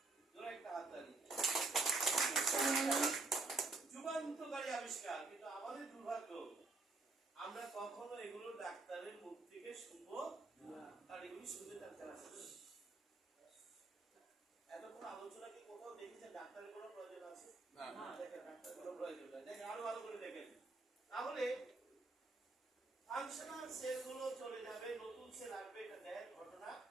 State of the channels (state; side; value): quieter; left; 3.4 dB